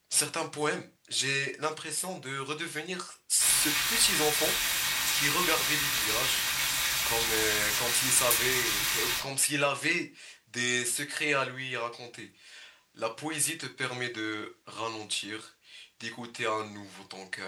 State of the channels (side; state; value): both; identical; correlation 1.00